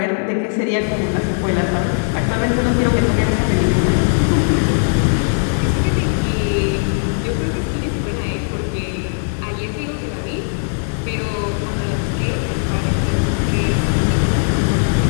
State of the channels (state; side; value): silent; right; digital silence